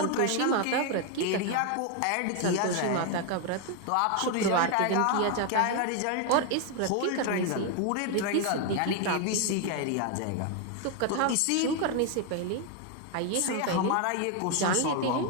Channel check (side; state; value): both; different; correlation 0.01